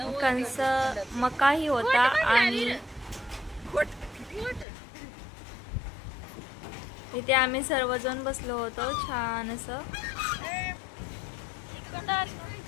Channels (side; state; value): right; drops out; at 4.7 s